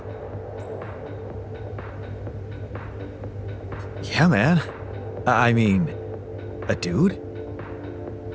Yeah, man. I mean, a dude?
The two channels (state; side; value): identical; both; correlation 1.00